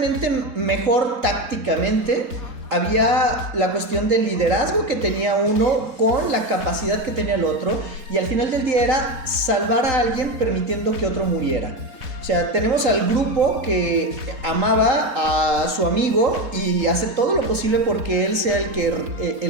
mejor tácticamente. Había la cuestión del liderazgo que tenía uno con la capacidad que tenía el otro, y al final del día era salvar a alguien permitiendo que otro muriera. O sea, tenemos al grupo que amaba a su amigo y hace todo lo posible porque él sea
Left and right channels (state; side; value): late; left; 3.9 ms